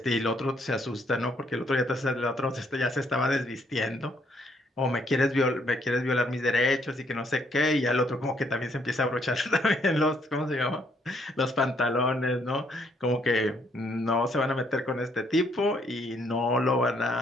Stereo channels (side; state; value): both; normal; correlation 0.69